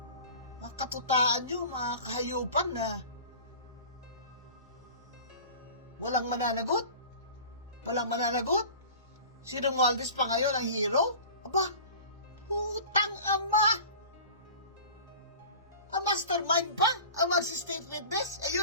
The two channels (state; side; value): inverted; both; correlation -0.39